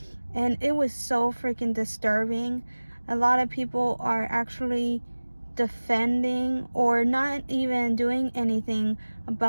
and it was so freaking disturbing. A lot of people are actually defending or not even doing anything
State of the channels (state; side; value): inverted; both; correlation -1.00